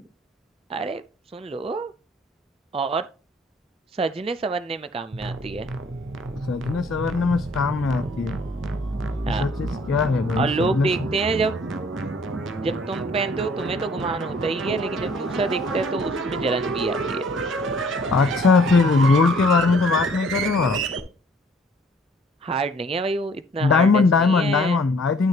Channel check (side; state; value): both; normal; correlation 0.58